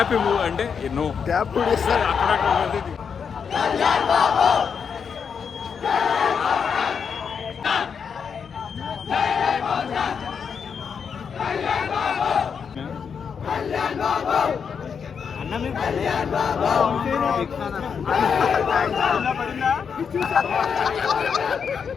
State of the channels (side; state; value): right; quieter; 6.6 dB